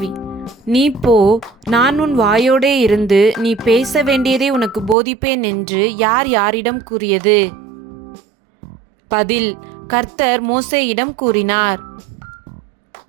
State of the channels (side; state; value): left; drops out; at 5.0 s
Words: நீ போ, நான் உன் வாயோடே இருந்து நீ பேச வேண்டியதை உனக்கு போதிப்பேன் என்று யார் யாரிடம் கூறியது? பதில்: கர்த்தர் மோசேயிடம் கூறினார்.